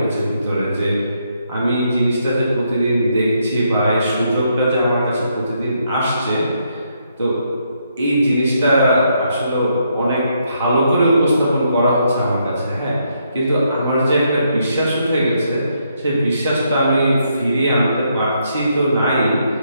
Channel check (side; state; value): both; inverted; correlation -0.76